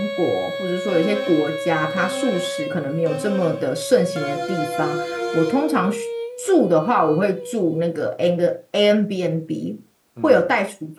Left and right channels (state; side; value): identical; both; correlation 1.00